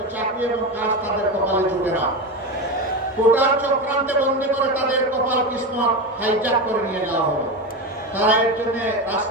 চাকরি এবং কাজ তাদের কপালে জুটে না। কোটার চক্রান্তে বন্দী করে তাদের কপাল কিসমত হাইজ্যাক করে নিয়ে যাওয়া হলো। তারা এর জন্য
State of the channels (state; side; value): normal; both; correlation 0.19